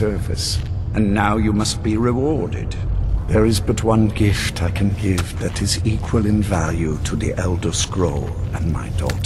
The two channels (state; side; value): identical; both; correlation 1.00